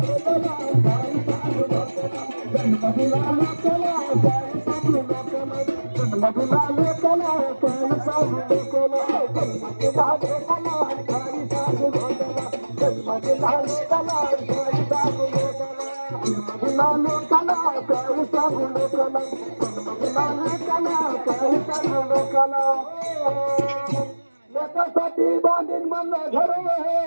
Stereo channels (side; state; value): both; inverted; correlation -1.00